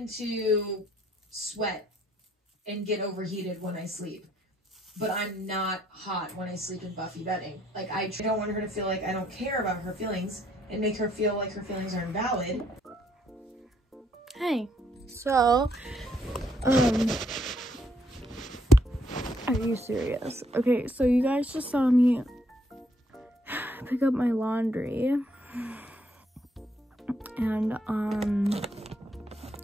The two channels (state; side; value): normal; both; correlation 0.69